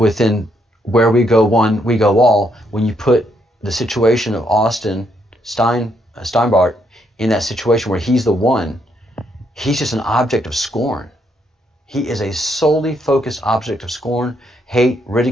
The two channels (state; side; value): normal; both; correlation 0.75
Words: where we go one, we go all, when you put the situation of Austin Steinbart in that situation where he's the one, he's just an object of scorn. He is a solely focused object of scorn, hate,